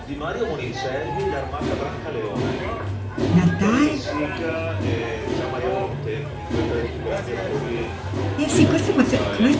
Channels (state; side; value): identical; both; correlation 1.00